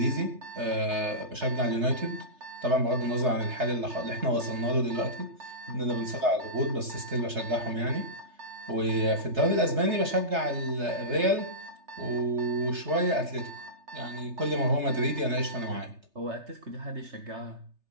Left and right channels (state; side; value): late; left; 3.3 ms